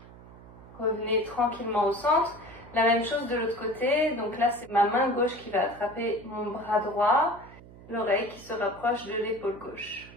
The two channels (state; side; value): noise; right; hum, 19 dB below the sound